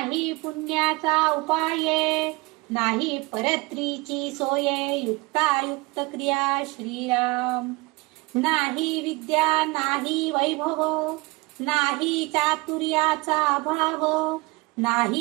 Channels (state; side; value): quieter; left; 25.1 dB